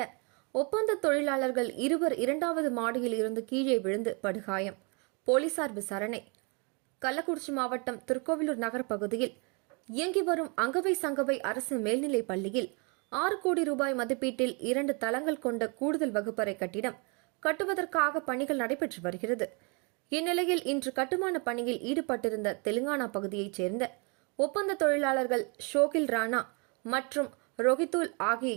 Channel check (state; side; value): quieter; left; 33.1 dB